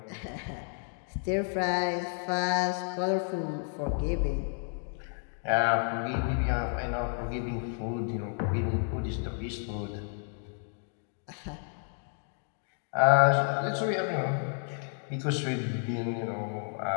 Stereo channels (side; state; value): right; silent; 57 dB below the other